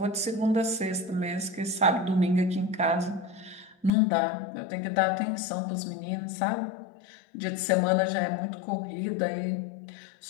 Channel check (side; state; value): right; drops out; at 3.9 s